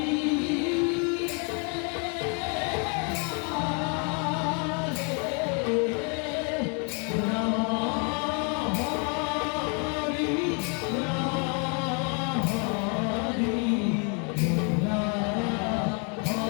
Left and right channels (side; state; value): right; quieter; 36.9 dB